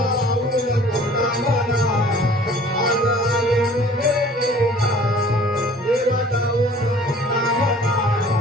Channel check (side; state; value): both; normal; correlation 0.50